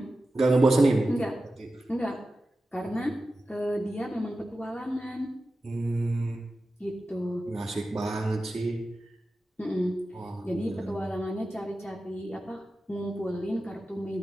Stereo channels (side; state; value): both; normal; correlation 0.93